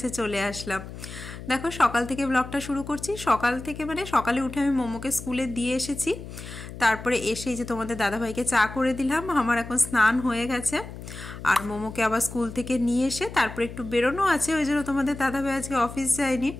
চলে আসলাম। দেখো সকাল থেকে ব্লগটা শুরু করছি। সকাল থেকে মানে সকালে উঠে আমি মোমোকে স্কুলে দিয়ে এসেছি। তারপরে এসেই যে তোমাদের দাদাভাইকে চা করে দিলাম। আমার এখন স্নান হয়ে গেছে। আর মোমোকে আবার স্কুল থেকে নিয়ে এসে তারপরে একটু বেরোনো আছে, ওই জন্য তোমাদের দাদাভাই আজকে অফিস যায়নি।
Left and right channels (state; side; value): noise; left; hum, 12 dB below the sound